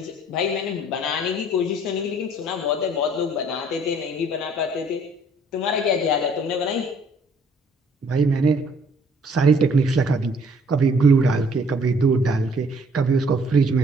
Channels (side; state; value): both; normal; correlation 0.59